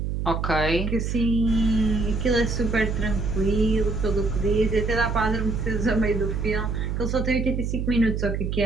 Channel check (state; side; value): noise; right; hum, 2 dB below the sound